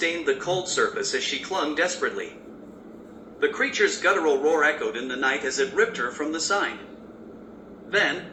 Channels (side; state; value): both; identical; correlation 1.00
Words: the cold surface as she clung desperately. The creature's guttural roar echoed in the night as it ripped her from the sign. Then,